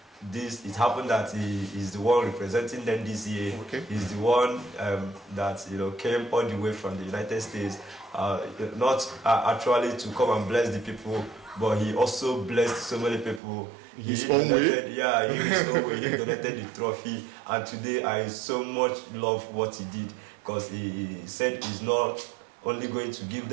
it happened that he is the one representing them this year. Okay. He's the one that came all the way from the United States, not actually to come and bless the people, but he also blessed so many people. His own way? Yeah, in his own way. He donated the trophy, and today I so much love what he did, because he said he's not only going to give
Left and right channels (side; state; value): left; drops out; at 13.4 s